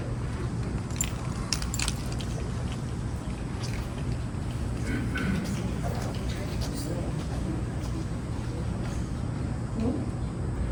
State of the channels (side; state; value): both; identical; correlation 1.00